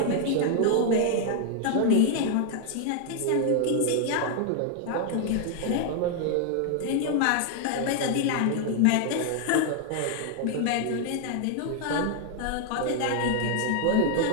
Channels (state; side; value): different; both; correlation 0.00